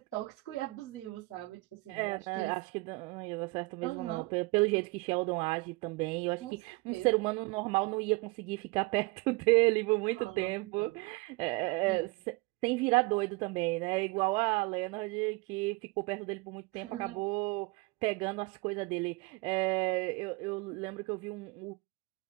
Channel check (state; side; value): quieter; left; 24.8 dB